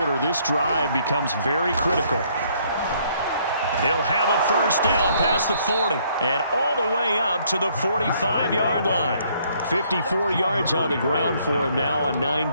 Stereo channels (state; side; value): inverted; both; correlation -0.66